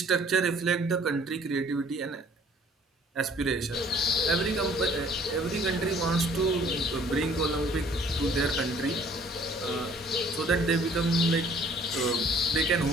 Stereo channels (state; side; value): normal; both; correlation 0.56